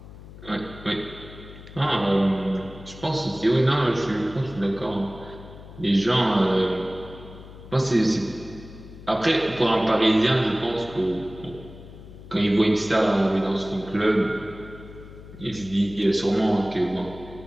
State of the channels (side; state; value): left; noise; hum, 17 dB below the sound